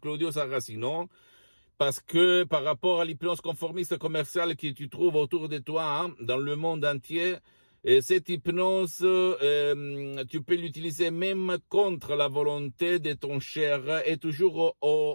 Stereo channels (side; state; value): both; inverted; correlation -1.00